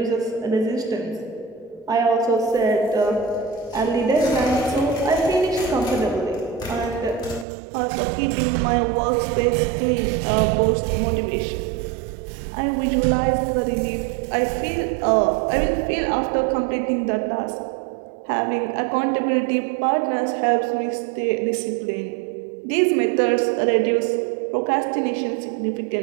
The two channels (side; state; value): left; drops out; at 7.5 s